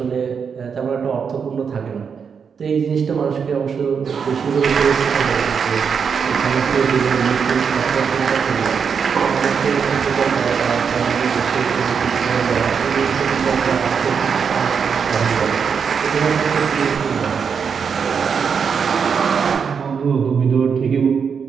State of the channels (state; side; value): quieter; left; 6.4 dB